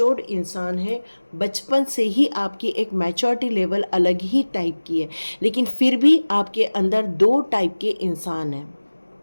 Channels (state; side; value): inverted; both; correlation -1.00